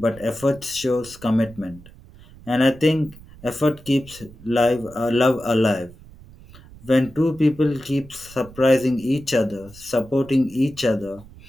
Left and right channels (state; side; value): noise; right; rumble, 21 dB below the sound